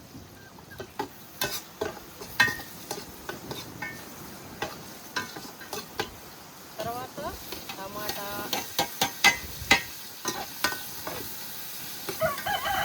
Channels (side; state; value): both; identical; correlation 1.00